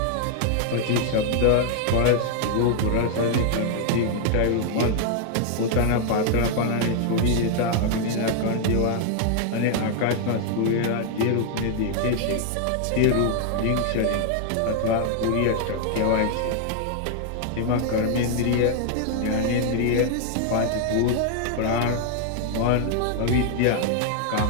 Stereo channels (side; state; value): both; different; correlation 0.00